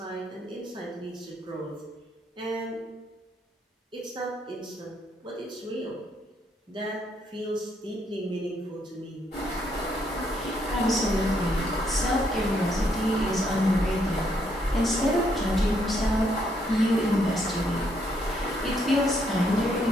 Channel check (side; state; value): both; normal; correlation 0.73